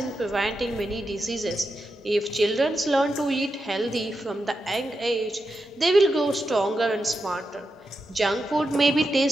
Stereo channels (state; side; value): normal; both; correlation 0.88